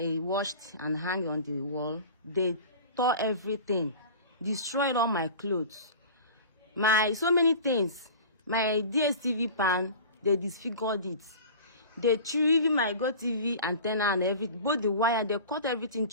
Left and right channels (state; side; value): inverted; both; correlation -0.38